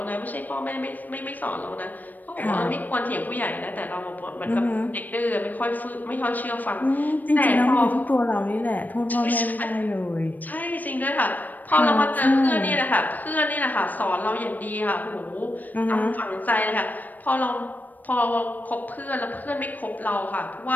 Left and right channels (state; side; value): late; right; 0.085 ms